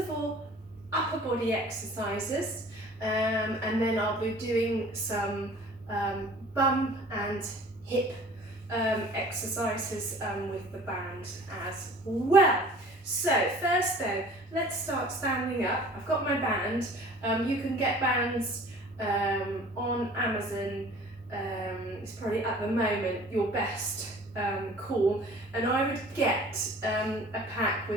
all, upper body exercises, and then I'll be doing some bum and hip exercises with the band as well. So first though, let's start standing up. I've got my band. You can get bands on Amazon. It's probably at the moment your best call, and I would get a pack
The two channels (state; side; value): normal; both; correlation 0.47